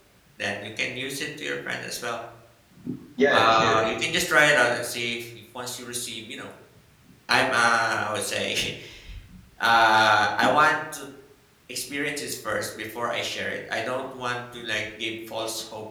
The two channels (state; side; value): identical; both; correlation 1.00